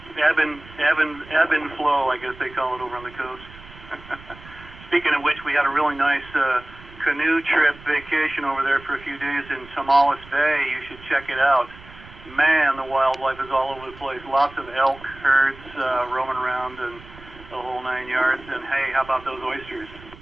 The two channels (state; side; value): noise; right; rumble, 19 dB below the sound